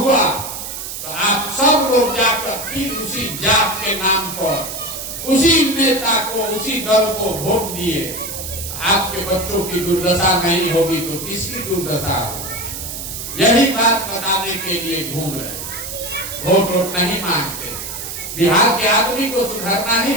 तो आप सब लोग जाकर फिर उसी जात के नाम पर उसी नेता को, उसी दल को वोट दिए। आपके बच्चों की दुर्दशा नहीं होगी तो किसकी दुर्दशा होगी? यही बात बताने के लिए घूम रहे। वोट नहीं मांगते। बिहार के आदमी को सुधरना ही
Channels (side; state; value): right; noise; hiss, 7 dB below the sound